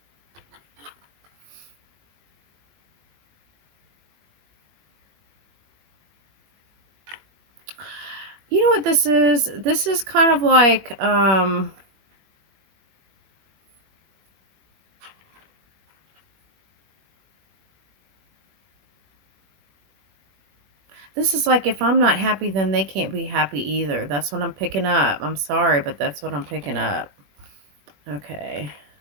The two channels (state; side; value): late; left; 21 ms